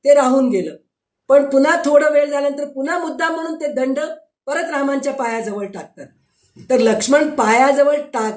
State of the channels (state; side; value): identical; both; correlation 1.00